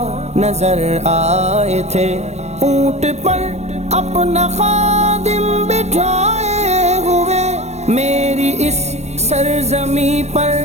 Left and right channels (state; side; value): late; left; 0.32 ms